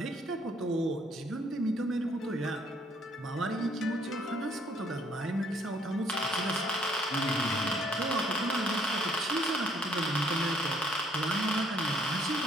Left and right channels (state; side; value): normal; both; correlation 0.64